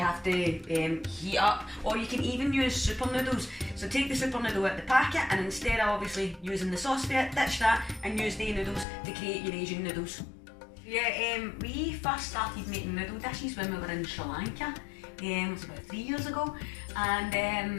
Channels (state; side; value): drops out; right; at 8.8 s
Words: to heat up, or you can even use super noodles. So take the super noodle out of the packet, and instead of obviously using the sauce bit, ditch that and use the noodles to create your Asian noodles. Yeah, we first started making noodle dishes when we were in Sri Lanka. It was about 3 years ago,